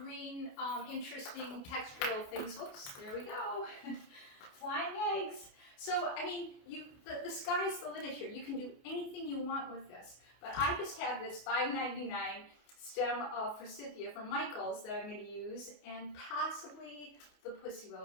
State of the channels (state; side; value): late; right; 29 ms